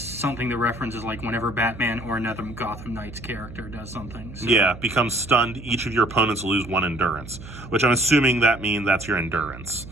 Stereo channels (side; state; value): right; noise; hum, 14 dB below the sound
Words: that references like whenever Batman or another Gotham Knights character does something. So. Yeah, becomes stunned, each of your opponents lose 1 endurance, which I'm assuming that means that's your endurance.